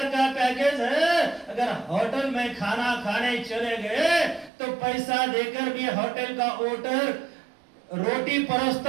का पैकेज है। अगर होटल में खाना खाने चले गए तो पैसा देकर भी होटल का ओटर रोटी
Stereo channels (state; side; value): drops out; left; at 4.5 s